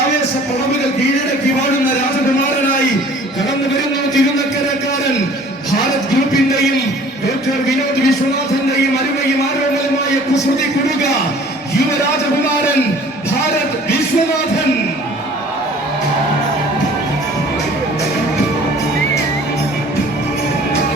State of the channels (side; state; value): both; normal; correlation 0.51